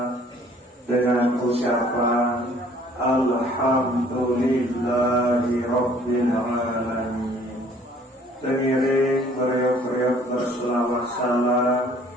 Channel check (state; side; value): normal; both; correlation 0.56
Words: dengan ucapan Alhamdulillahi Rabbil Alamin. Pengiring beriuk berselawat salam